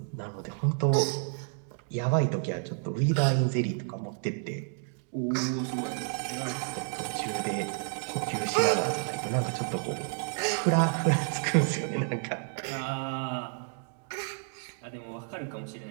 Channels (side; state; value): left; silent; 58 dB below the other